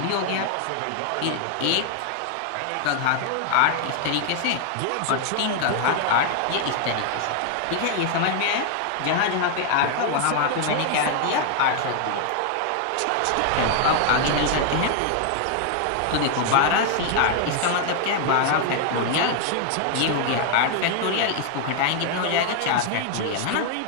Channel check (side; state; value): both; different; correlation 0.00